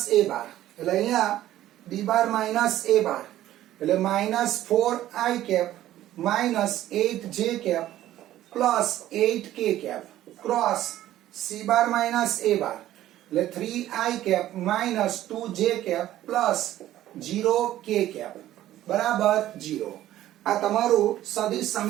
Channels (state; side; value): quieter; left; 13.6 dB